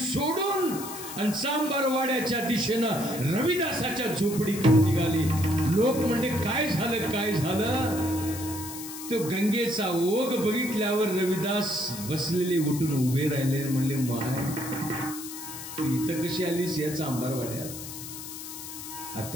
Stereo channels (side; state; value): left; noise; hiss, 10 dB below the sound